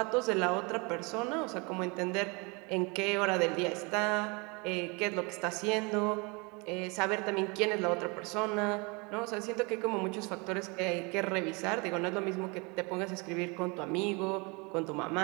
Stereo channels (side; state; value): left; quieter; 29.2 dB